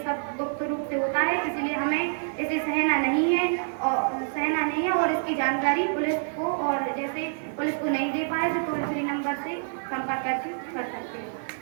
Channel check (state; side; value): silent; left; digital silence